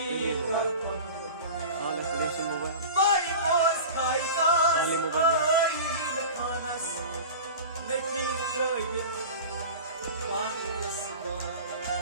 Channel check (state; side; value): inverted; both; correlation -0.34